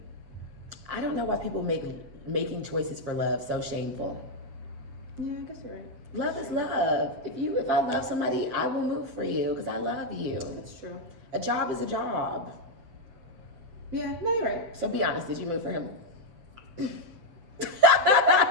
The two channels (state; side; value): late; left; 7.4 ms